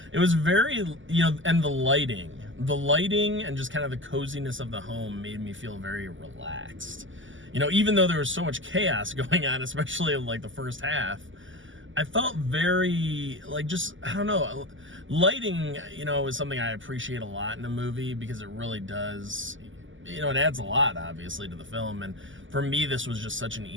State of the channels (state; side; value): late; left; 0.56 ms